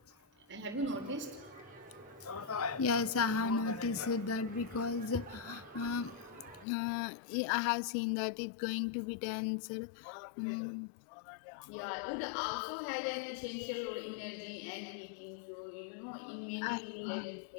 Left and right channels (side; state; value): right; drops out; at 6.7 s